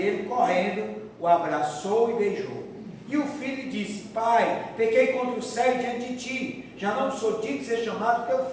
correndo, o abraçou e beijou. E o filho lhe disse: Pai, pequei contra o céu e diante de ti, já não sou digno de ser chamado teu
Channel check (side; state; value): both; identical; correlation 1.00